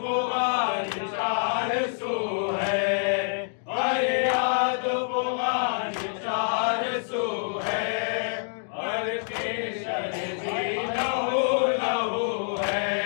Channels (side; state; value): right; silent; digital silence